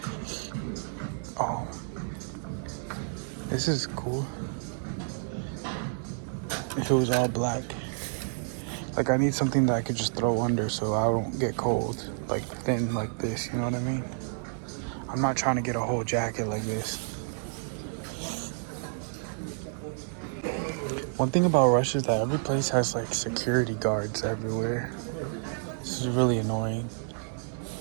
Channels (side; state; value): left; silent; digital silence